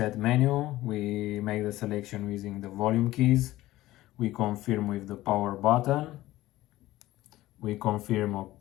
menu. We make the selection using the volume keys. We confirm with the power button. We confirm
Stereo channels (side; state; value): right; quieter; 16.4 dB